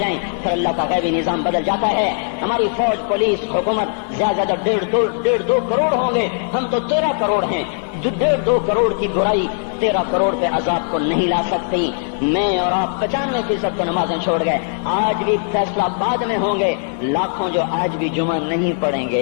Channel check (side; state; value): right; silent; digital silence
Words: پھر اللہ کا غیبی نظام بدل جاتا ہے. ہماری فوج، پولیس، حکومت زیادہ 1.5-2 کروڑ ہوں گے، ہم تو 13 کروڑ ہیں. 1.5-2 کروڑ کی برائی 13 کروڑ پہ عذاب کو نہیں لا سکتی. میں اور آپ 95% کو نمازیں چھوڑ گئے، آج بھی فیصلہ بعد میں ہوں گے. لاکھوں جو آج بھی جمعہ نہیں پڑھیں